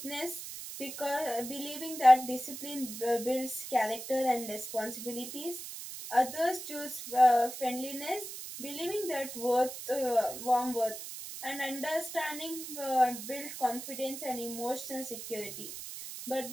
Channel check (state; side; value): noise; right; hiss, 9 dB below the sound